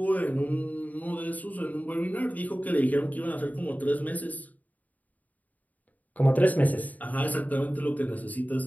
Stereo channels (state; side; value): late; right; 0.077 ms